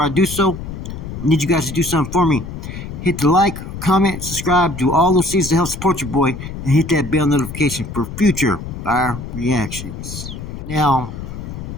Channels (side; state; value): left; noise; rumble, 9 dB below the sound